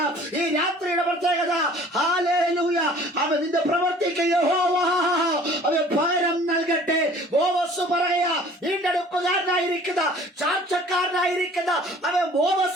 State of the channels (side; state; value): both; normal; correlation 0.50